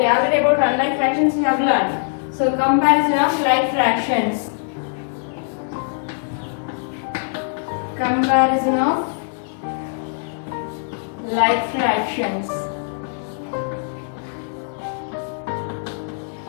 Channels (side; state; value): right; silent; 65 dB below the other